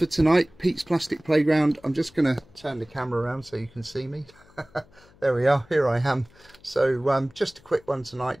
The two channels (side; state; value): left; noise; hum, 28 dB below the sound